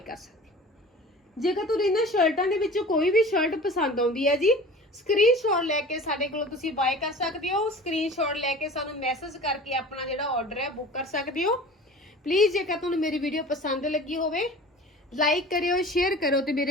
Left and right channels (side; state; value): both; normal; correlation 0.40